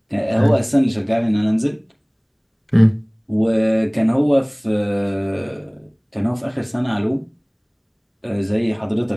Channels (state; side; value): identical; both; correlation 1.00